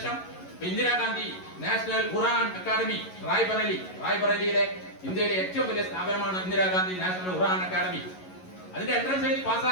ഇന്ദിരാഗാന്ധി നാഷണൽ ഖുറാൻ അക്കാദമി റായ്ബറേലിയിലെ ഇന്ത്യയിലെ ഏറ്റവും വലിയ സ്ഥാപനമാണ് ഇന്ദിരാഗാന്ധി നാഷണൽ ഖുറാൻ അക്കാദമി. അതിന്റെ എൻട്രൻസ് എഴുതി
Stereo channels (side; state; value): right; late; 11 ms